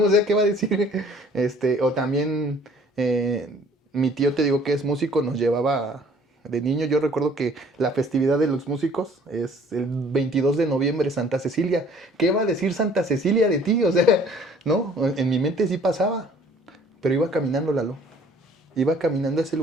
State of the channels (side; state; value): both; normal; correlation 0.55